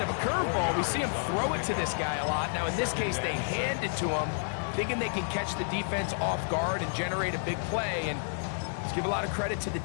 of a curveball. We see him throw it to this guy a lot. Now, in this case, they hand it to him, thinking they can catch the defense off guard and generate a big play. And let's give a lot of credit to the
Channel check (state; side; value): silent; right; digital silence